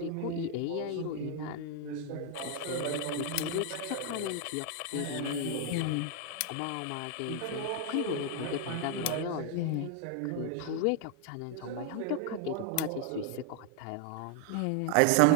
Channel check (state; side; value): different; both; correlation 0.00